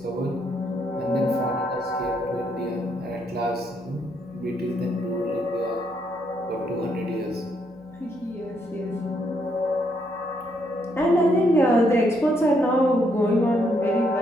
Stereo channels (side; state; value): right; noise; hum, 28 dB below the sound